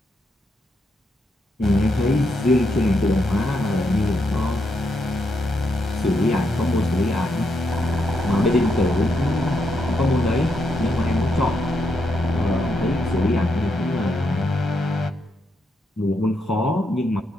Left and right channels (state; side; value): normal; both; correlation 0.80